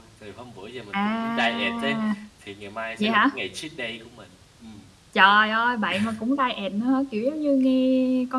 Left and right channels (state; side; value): identical; both; correlation 1.00